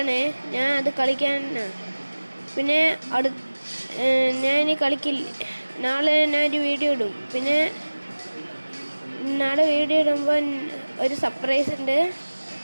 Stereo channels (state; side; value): inverted; both; correlation -1.00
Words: ഞാൻ അത് കളിക്കാൻ പിന്നെ ഞാൻ ഇനി കളിക്കില്ല. നാളെ ഞാനൊരു വീഡിയോ ഇടും. പിന്നെ നാളെ വീഡിയോ ഇടുമ്പോൾ ഒരു സർപ്രൈസ് ഉണ്ട്.